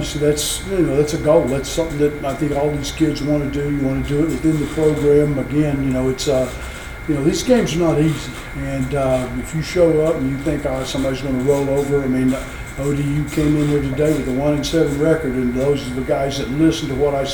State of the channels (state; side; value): identical; both; correlation 1.00